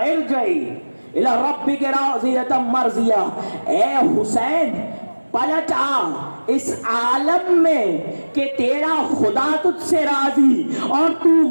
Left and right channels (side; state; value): both; inverted; correlation -1.00